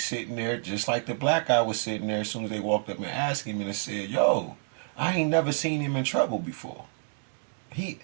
there just like the black guy was sitting there as soon as they walked up and asked him and said, yo, I ain't never seen him in trouble before.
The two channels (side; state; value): left; silent; 59 dB below the other